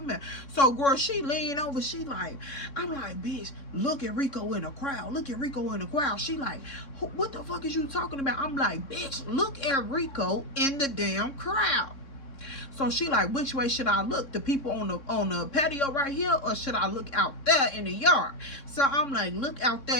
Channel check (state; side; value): late; right; 3.6 ms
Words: So, girl, she lean over, she like, I'm like, bitch, look at Rico in the crowd. She like, what the fuck is you talking about? I'm like, bitch, look at Rico in the damn crowd. So she like, which way should I look? The people on the patio right here, or should I look out there in the yard? So I'm like, look out